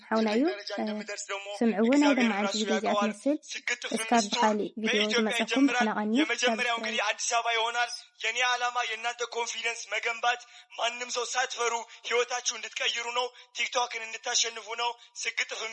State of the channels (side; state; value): both; identical; correlation 1.00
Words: حونايو سمعونا دم عن فيديو زي أتمثل اسكاب بحالي فيديو مساكم بحنا غني የመጀመሪያው እንግዲህ አዲስ አበባ ይሆናል። የኔ ዓላማ የእናንተ ኮንፊደንስ መገንባት፣ ማንም ሰው ሳትፈሩ ህይወታችሁ እንድትቀይሩ ነው። ቲክቶክን እንድታሸንፉ ነው። ስግጥፍ